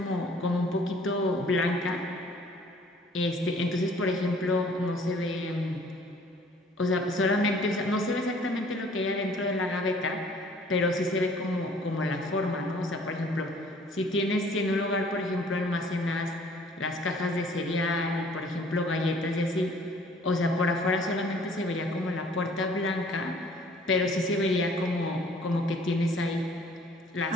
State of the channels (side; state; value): both; normal; correlation 0.56